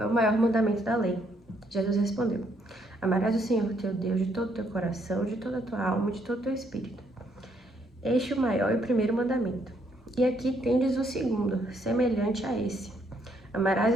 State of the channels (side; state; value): both; normal; correlation 0.71